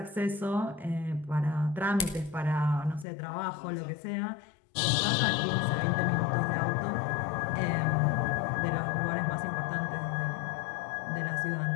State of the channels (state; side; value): drops out; right; at 3.1 s